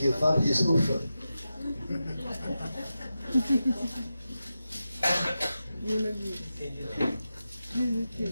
o Fábio diz, ufa.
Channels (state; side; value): inverted; both; correlation -0.91